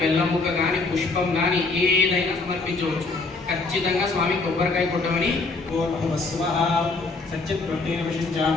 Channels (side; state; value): right; quieter; 3.7 dB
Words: ముక్క కానీ పుష్పం కానీ ఏదైనా సమర్పించవచ్చు. ఖచ్చితంగా స్వామి కొబ్బరికాయ కొట్టమని